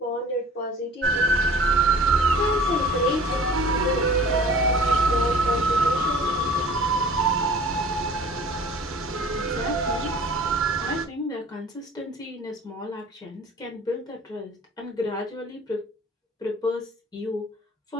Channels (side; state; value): both; normal; correlation 0.46